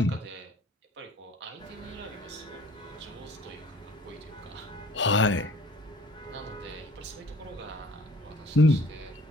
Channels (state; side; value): normal; both; correlation 0.52